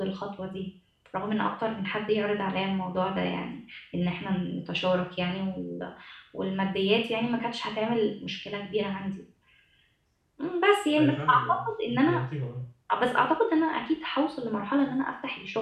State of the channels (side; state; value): both; identical; correlation 1.00